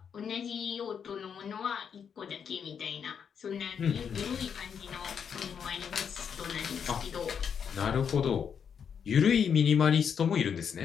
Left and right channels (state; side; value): quieter; right; 7.3 dB